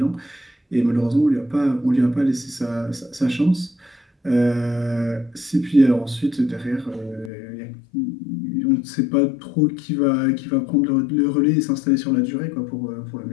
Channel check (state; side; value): drops out; right; at 7.3 s